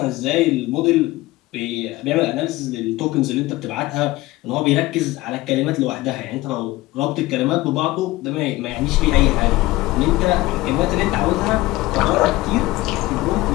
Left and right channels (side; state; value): right; quieter; 18.9 dB